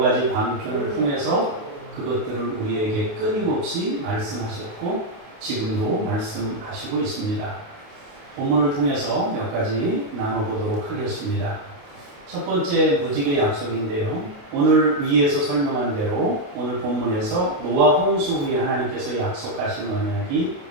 방편을 통해서 그것들을 우리에게 끊임없이 말씀하셨고 지금도 말씀하시고 있습니다. 본문을 통해서 몇 가지 나눠보도록 하겠습니다. 첫 번째 무지개 약속인데요. 오늘 위에서 설명한 대로 오늘 본문에서 노아 홍수 후에 하나님께서 약속하신 언약이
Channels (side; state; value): left; late; 28 ms